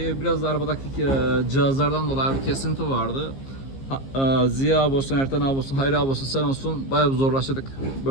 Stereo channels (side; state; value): right; late; 15 ms